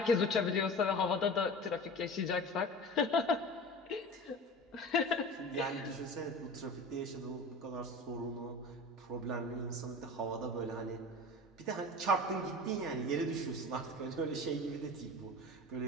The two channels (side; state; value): both; normal; correlation 0.35